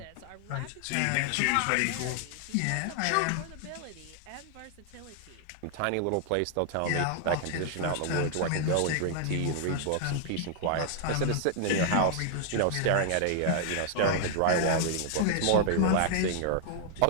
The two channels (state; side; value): different; both; correlation -0.01